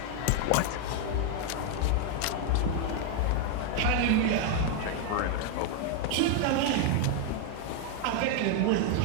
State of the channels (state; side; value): different; both; correlation 0.01